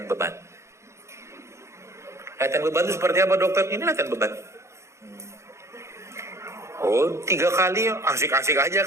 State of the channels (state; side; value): late; left; 0.14 ms